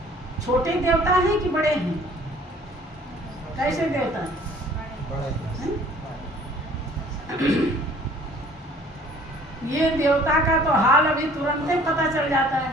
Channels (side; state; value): both; normal; correlation 0.54